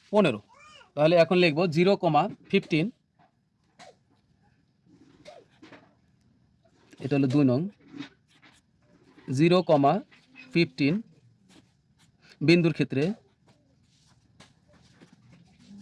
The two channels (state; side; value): identical; both; correlation 1.00